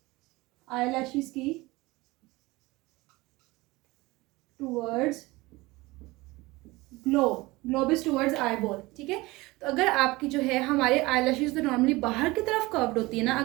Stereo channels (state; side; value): quieter; left; 21.4 dB